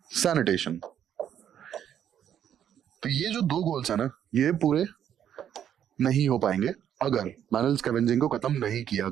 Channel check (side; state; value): left; quieter; 9.7 dB